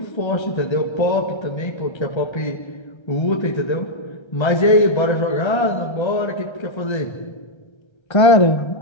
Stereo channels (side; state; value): right; late; 1.3 ms